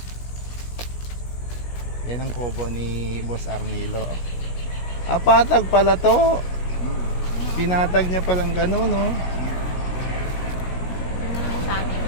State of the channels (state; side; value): late; right; 17 ms